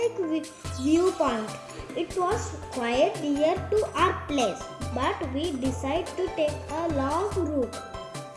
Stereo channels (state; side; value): identical; both; correlation 1.00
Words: View Point. It was quite near to our place, but we decided to take a long route.